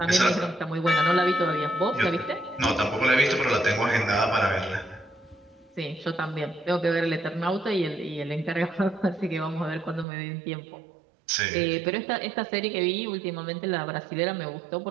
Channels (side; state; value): left; drops out; at 10.1 s